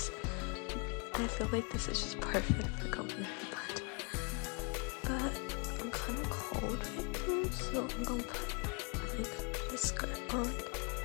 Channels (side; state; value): right; quieter; 33.0 dB